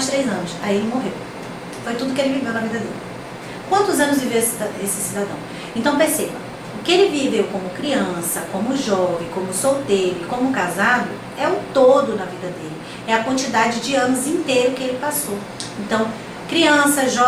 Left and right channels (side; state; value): both; identical; correlation 1.00